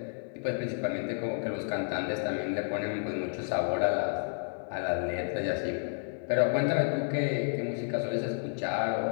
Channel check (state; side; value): silent; right; digital silence